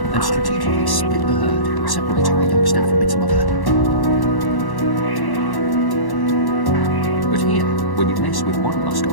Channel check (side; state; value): right; late; 1.1 ms